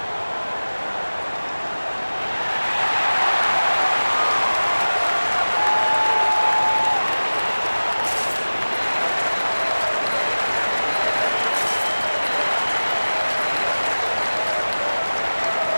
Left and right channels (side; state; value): both; inverted; correlation -1.00